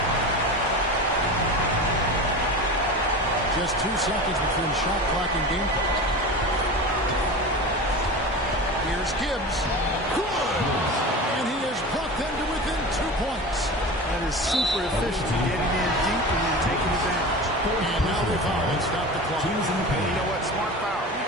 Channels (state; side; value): normal; both; correlation 0.31